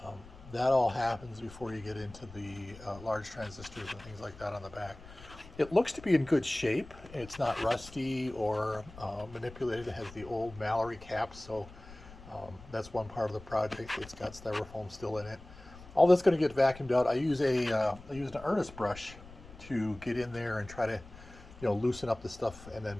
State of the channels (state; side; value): noise; left; rumble, 18 dB below the sound